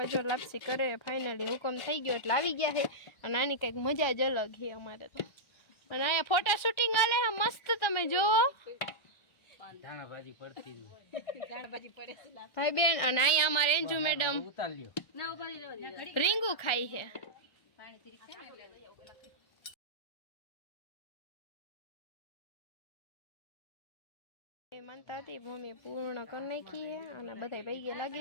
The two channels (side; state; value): right; late; 1.4 ms